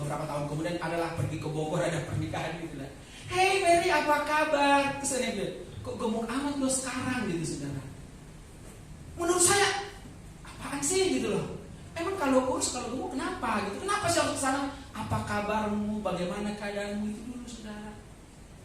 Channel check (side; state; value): both; identical; correlation 1.00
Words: tahun kemudian adalah pergi ke Bogor, ada pernikahan gitu lah. Hey Mary, apa kabar? Terus saya bilang, kok gemuk amat lo sekarang gitu saudara. Menurut saya apaan sih gitu loh. Emang kalau kurus kalau gemuk kenapa gitu? Kenapa sih harus kesana? Apa kabarmu? Bagaimana keadaanmu? Itu dulu saudara.